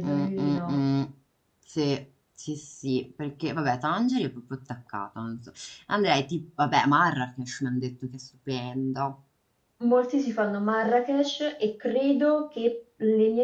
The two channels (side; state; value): both; identical; correlation 1.00